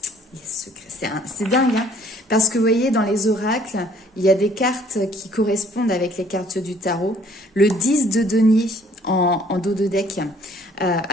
C'est dingue, hein, parce que vous voyez, dans les oracles, il y a des cartes qui correspondent avec les cartes du tarot. Le 10 de denier en dos de deck.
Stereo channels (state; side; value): normal; both; correlation 0.59